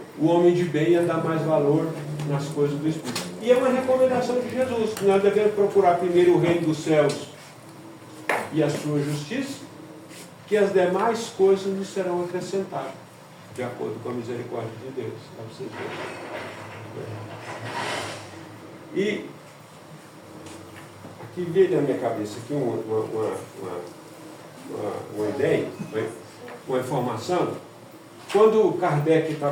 o homem de bem ia dar mais valor nas coisas do Espírito. E é uma recomendação de Jesus, que nós devemos procurar primeiro o reino dos céus e a sua justiça, que as demais coisas nos serão acrescentadas, de acordo com a misericórdia de Deus. Para vocês verem. E aqui veio na minha cabeça aqui uma ideia, uma informação. Quando Kardec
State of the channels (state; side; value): identical; both; correlation 1.00